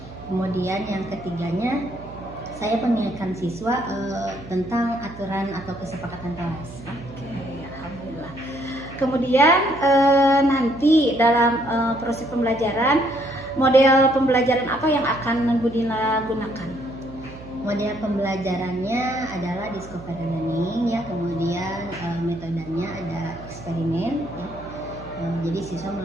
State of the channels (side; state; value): right; noise; hum, 16 dB below the sound